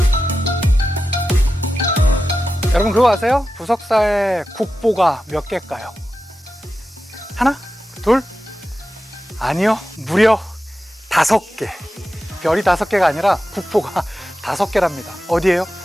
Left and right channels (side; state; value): both; normal; correlation 0.92